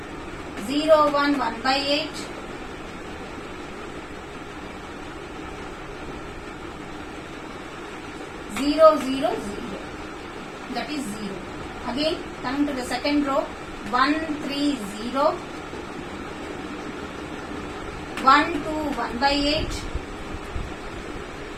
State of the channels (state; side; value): identical; both; correlation 1.00